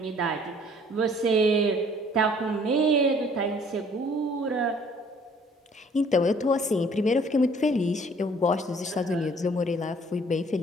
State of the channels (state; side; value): normal; both; correlation 0.57